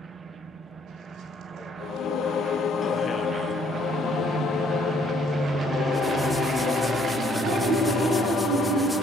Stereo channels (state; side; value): normal; both; correlation 0.64